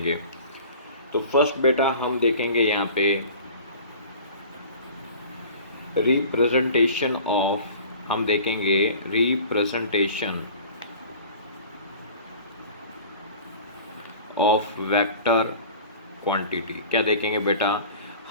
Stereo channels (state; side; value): inverted; both; correlation -0.43